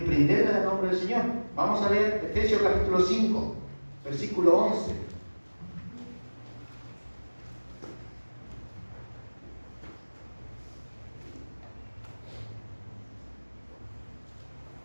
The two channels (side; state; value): both; inverted; correlation -1.00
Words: en el nombre del Señor. Vamos a leer Efesios capítulo 5, versículo 11.